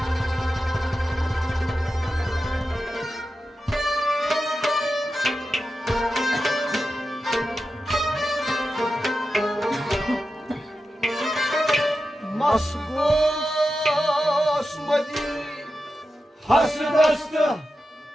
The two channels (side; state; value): both; normal; correlation 0.91